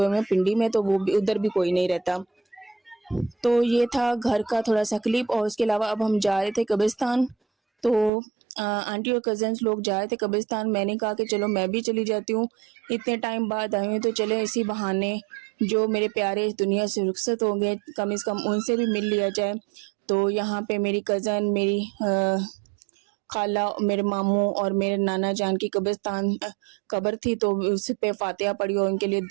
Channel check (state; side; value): drops out; left; at 8.1 s